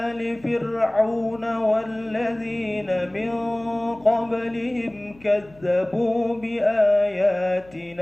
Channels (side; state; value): left; noise; hum, 26 dB below the sound